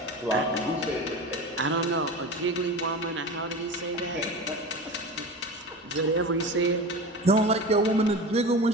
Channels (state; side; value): normal; both; correlation 0.30